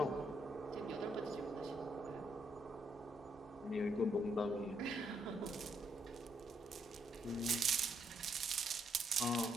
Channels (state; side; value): normal; both; correlation 0.75